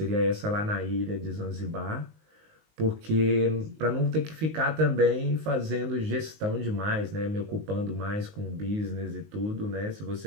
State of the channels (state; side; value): late; left; 19 ms